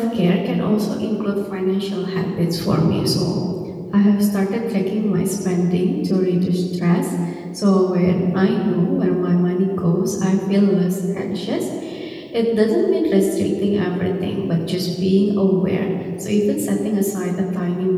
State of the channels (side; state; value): both; identical; correlation 1.00